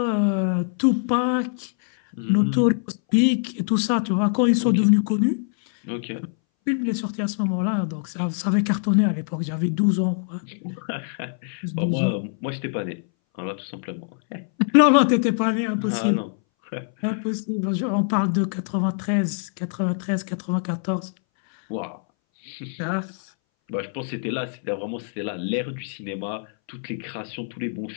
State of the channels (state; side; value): silent; right; 61 dB below the other